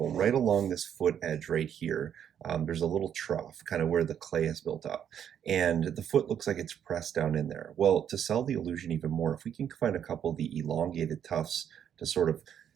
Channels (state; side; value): quieter; left; 9.0 dB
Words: right along this foot edge right here, there's a little trough kind of where the clay is built up, and the foot looks like it's pressed down in there. Well, to sell the illusion even more, if we can find a couple of the elongated tufts to sort of